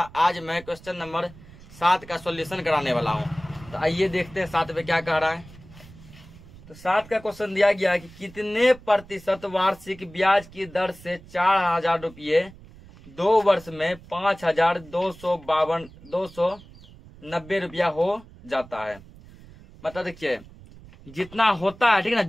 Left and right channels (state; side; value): noise; right; rumble, 20 dB below the sound